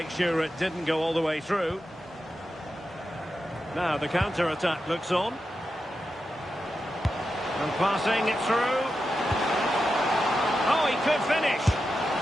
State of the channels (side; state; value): both; normal; correlation 0.89